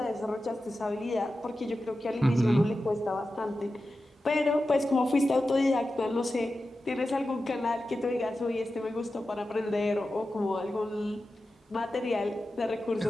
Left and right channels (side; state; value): both; normal; correlation 0.92